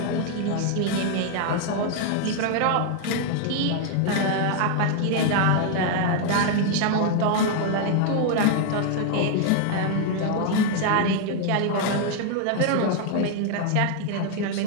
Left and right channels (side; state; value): both; different; correlation 0.00